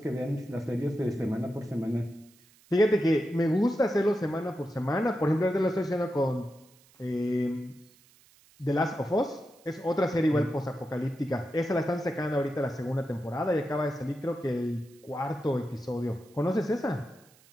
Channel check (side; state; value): right; noise; hiss, 29 dB below the sound